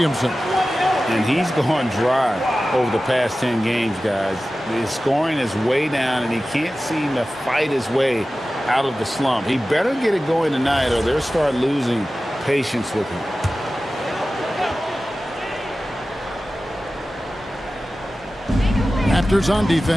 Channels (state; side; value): normal; both; correlation 0.95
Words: And he's gone dry over the past 10 games, guys. His scoring is way down, and he can't seem to fight his way out of the slump. He better get it going tonight, or they'll start losing patience with him. Raptors on